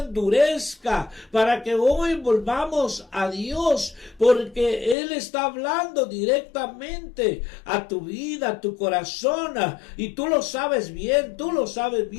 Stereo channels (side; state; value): right; drops out; at 5.0 s